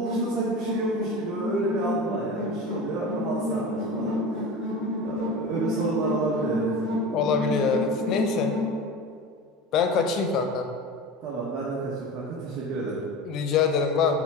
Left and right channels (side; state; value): both; normal; correlation 0.31